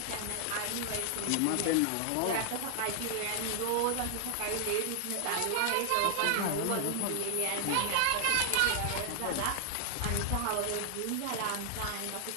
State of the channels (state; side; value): different; both; correlation 0.00